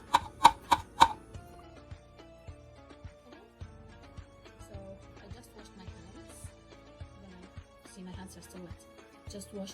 I just washed my hands. See, my hands are still wet. Just wash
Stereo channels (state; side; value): identical; both; correlation 1.00